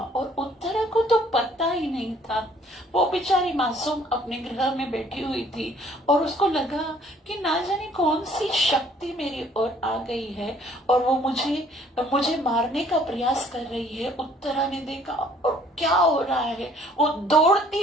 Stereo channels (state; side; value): normal; both; correlation 0.59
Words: उत्तरा को तो पता ही नहीं था, वो बेचारी मासूम अपने ग्रह में बैठी हुई थी और उसको लगा कि ना जाने कौन सी शक्ति मेरी ओर आ गई है और वो मुझे मारने का प्रयास कर रही है। उत्तरा ने देखा और क्या हो रहा है, वो दौड़ती